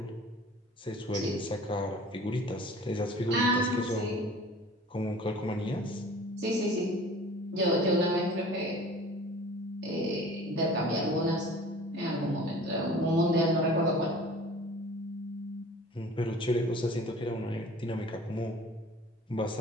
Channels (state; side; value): normal; both; correlation 0.45